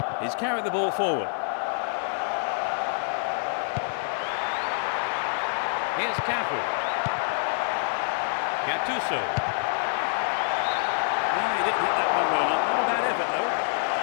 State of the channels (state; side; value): silent; right; 55 dB below the other